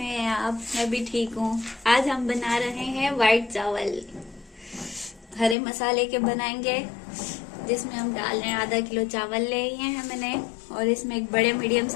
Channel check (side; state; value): right; drops out; at 5.6 s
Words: हैं आप? मैं भी ठीक हूँ। आज हम बना रहे हैं वाइट चावल। हरे मसाले के बनाएंगे, जिसमें हम डाल रहे हैं आधा किलो चावल लिए हैं मैंने, और इसमें एक बड़े मीडियम